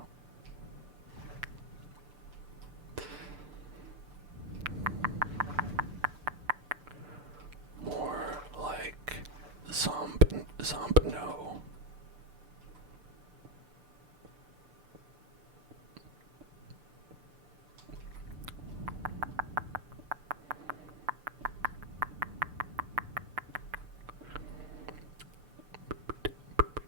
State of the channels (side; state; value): left; late; 6.8 ms